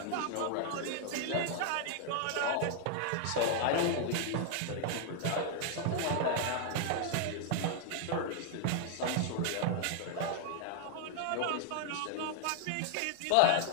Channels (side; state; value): both; different; correlation 0.00